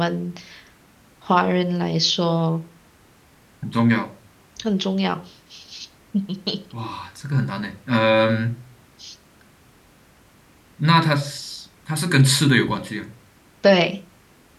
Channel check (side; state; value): both; identical; correlation 1.00